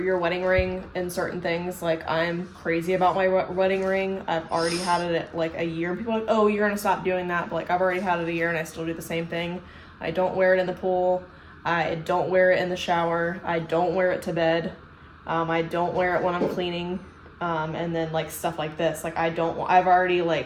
wedding ring in certain things. Like, I'm crazy about my wedding ring. I've already had it at like a year. People are like, oh, you're going to stop doing that. But like, I've already had it a year and I still do the same thing. I don't wear it in the pool. I don't wear it in the shower. I don't wear it to bed. I don't wear it when I'm cleaning. And then like stuff like this, like I'm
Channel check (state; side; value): identical; both; correlation 1.00